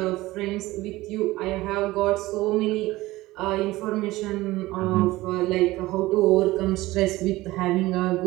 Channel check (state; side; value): quieter; left; 18.5 dB